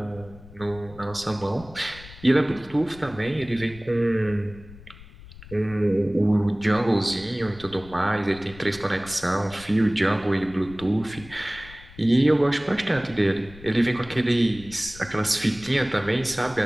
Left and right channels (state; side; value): noise; left; rumble, 19 dB below the sound